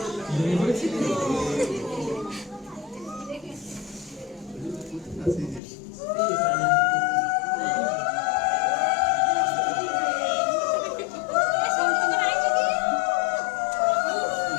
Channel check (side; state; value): right; drops out; at 5.6 s